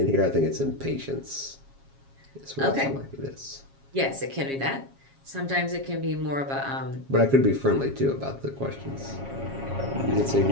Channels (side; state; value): left; late; 7.3 ms